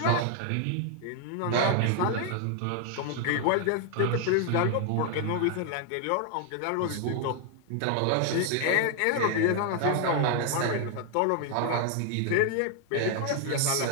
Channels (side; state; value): both; different; correlation 0.00